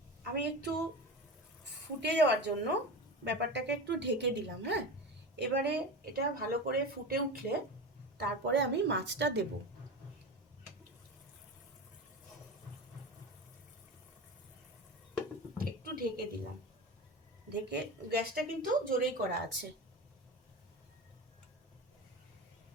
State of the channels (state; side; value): normal; both; correlation 0.26